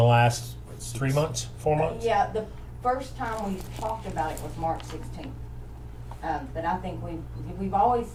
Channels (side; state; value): both; identical; correlation 1.00